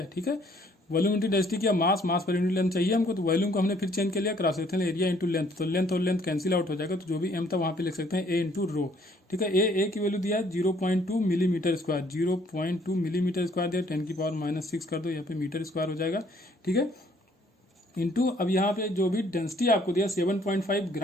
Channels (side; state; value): both; normal; correlation 0.62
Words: ठीक है। वॉल्यूम इंटू डेंसिटी किया, मास पर यूनिट लेंथ चाहिए हमको, तो वॉल्यूम को हमने फिर चेंज कर लिया, cross section area into length, तो लेंथ और लेंथ कैंसिल आउट हो जाएगा। तो जो भी एम था वहां पे लिख सकते हैं ए इंटू रो, ठीक है। ए की वैल्यू दिया है 0.2 मिलीमीटर स्क्वायर, 0.2 मिलीमीटर स्क्वायर दिया, 10⁻⁶ कर दो, यहाँ पे मीटर स्क्वायर हो जाएगा, ठीक है। इंटू अब यहाँ पे जो भी डेंसिटी आपको दिया 7.5